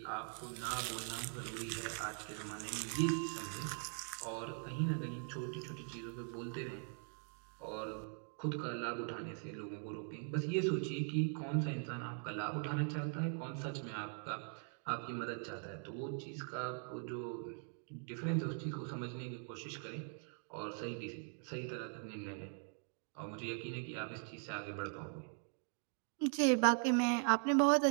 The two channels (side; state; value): left; silent; 50 dB below the other